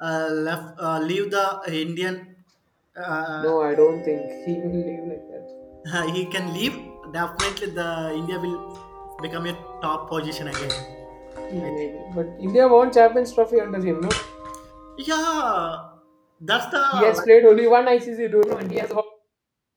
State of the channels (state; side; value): identical; both; correlation 1.00